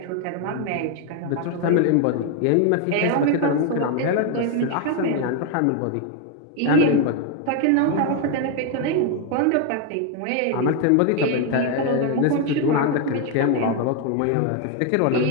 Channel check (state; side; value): different; both; correlation 0.01